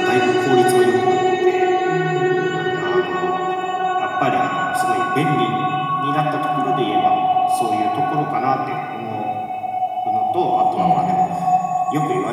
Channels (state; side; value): identical; both; correlation 1.00